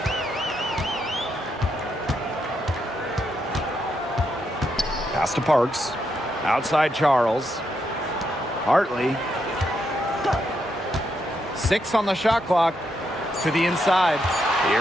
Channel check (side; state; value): both; normal; correlation 0.80